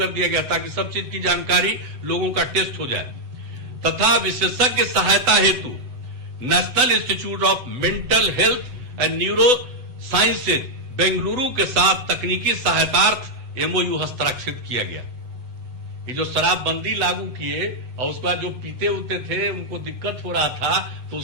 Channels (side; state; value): left; late; 7.7 ms